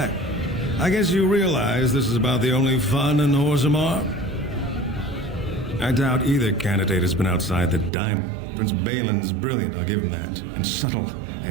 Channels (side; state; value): left; drops out; at 7.9 s